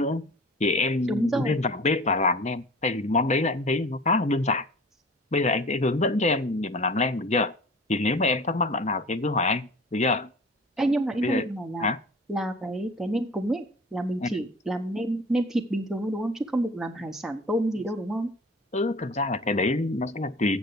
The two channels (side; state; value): both; normal; correlation 0.40